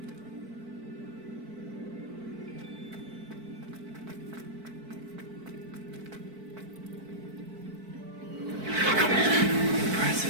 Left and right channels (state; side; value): late; left; 4.5 ms